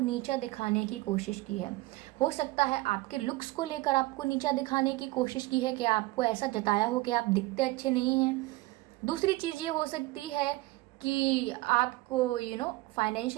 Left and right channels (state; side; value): quieter; left; 20.1 dB